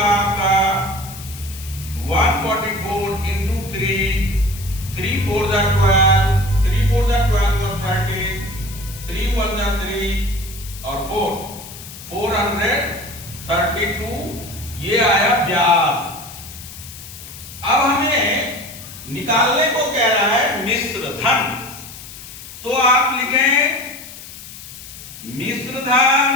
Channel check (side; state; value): left; noise; hiss, 14 dB below the sound